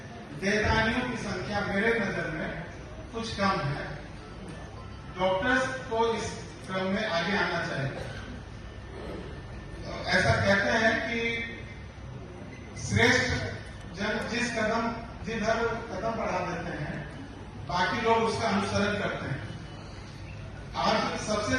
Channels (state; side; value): identical; both; correlation 1.00